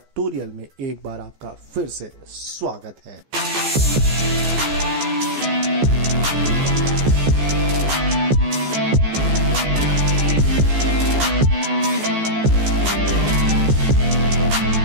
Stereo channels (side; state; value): left; late; 14 ms